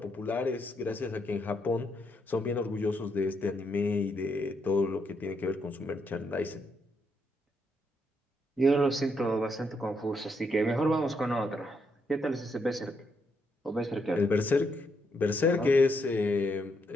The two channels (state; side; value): normal; both; correlation 0.77